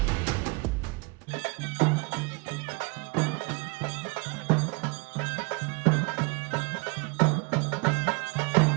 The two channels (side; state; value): left; quieter; 28.1 dB